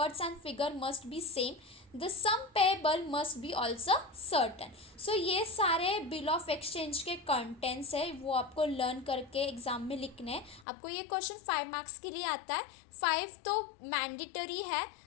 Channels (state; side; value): drops out; right; at 10.7 s